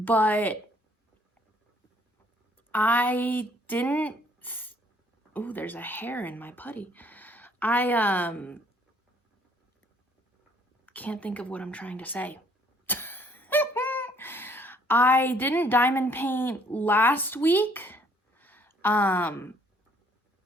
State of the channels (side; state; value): both; normal; correlation 0.62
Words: I didn't, oh, there's a hair in my putty. I can't think of what I'm trying to say. I didn't diamond paint last week.